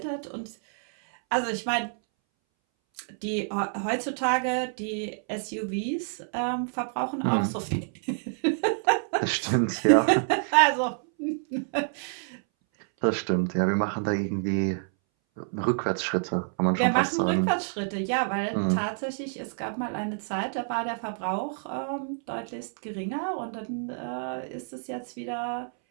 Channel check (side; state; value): left; silent; 59 dB below the other